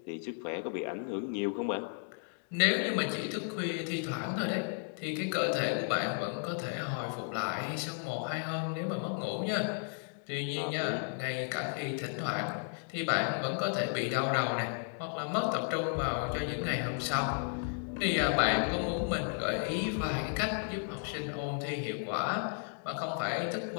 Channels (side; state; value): right; silent; 55 dB below the other